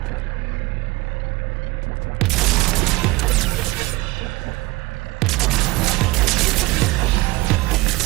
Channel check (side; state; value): left; quieter; 21.2 dB